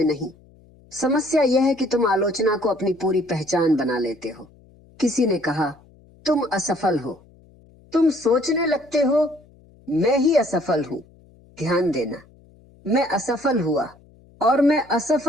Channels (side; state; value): left; noise; hum, 28 dB below the sound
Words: नहीं, समस्या यह है कि तुम आलोचना को अपनी पूरी पहचान बना लेते हो। किसी ने कहा तुम असफल हो, तुम सोचने लगते हो मैं ही असफल हूं। ध्यान देना, मैं असफल हुआ और मैं